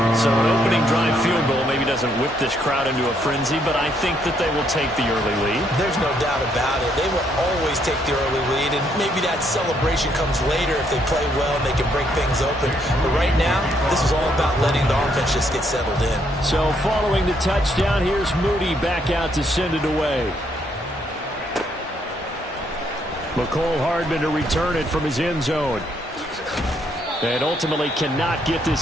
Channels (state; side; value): normal; both; correlation 0.72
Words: So an opening drive field goal maybe doesn't whip this crowd into a frenzy, but I think that they will take the early lead. There's no doubt about it. They will always take the early lead, and maybe that celebration comes later if they play well and they can break things open. But right now, this is all about letting the offense just get settled in. So following the touchdown, here's Moody back out to send it away. McCole Hardman to return it from his end zone. And ultimately cannot get